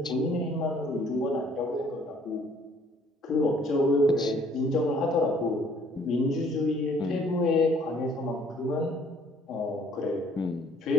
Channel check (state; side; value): normal; both; correlation 0.60